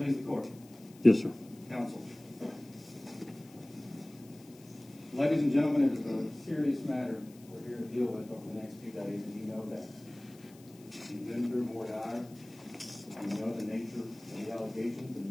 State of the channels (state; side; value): noise; left; hiss, 24 dB below the sound